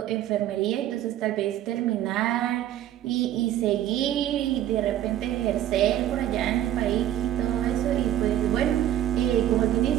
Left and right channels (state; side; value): quieter; left; 12.0 dB